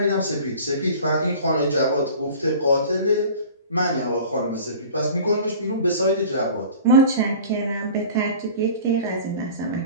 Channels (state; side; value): inverted; both; correlation -0.41